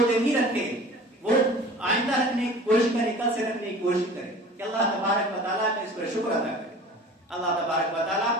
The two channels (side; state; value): both; normal; correlation 0.42